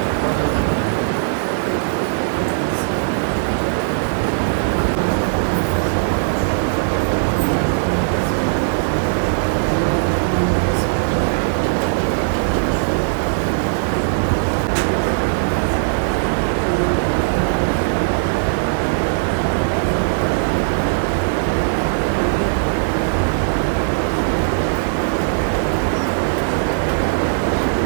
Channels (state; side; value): silent; left; 67 dB below the other